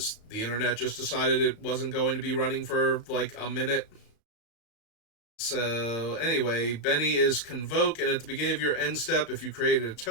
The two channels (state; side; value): late; right; 35 ms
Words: the internet just decided it wasn't going to be running for like a minute. So anyway, Benny is Convoke, and at the beginning of your end step, if you created a